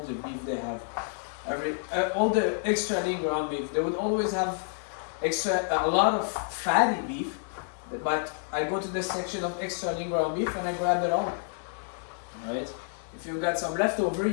beef they have. All the extra lean ground beef. They would always have a lot of fatty beef, but I go to this section of extra lean ground beef and I grab it all. Alright? If you've got some leftover,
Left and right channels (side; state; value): right; silent; 59 dB below the other